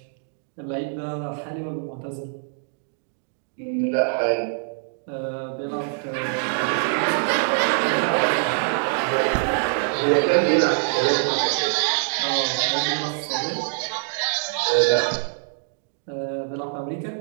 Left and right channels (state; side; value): silent; left; digital silence